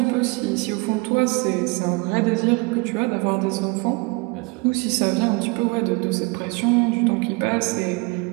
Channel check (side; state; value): left; quieter; 28.3 dB